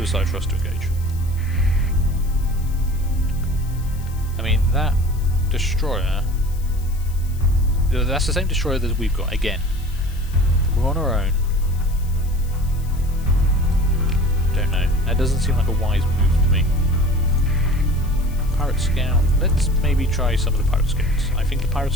for us to engage. I mean, that destroyer... That's the same destroyer that we've got, again. We're on our own. Don't know. That doesn't seem like a wise move to me. Pirate Scout. Let's maybe try some of the Pirate Scouts. I think the Pirate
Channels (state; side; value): noise; left; hiss, 22 dB below the sound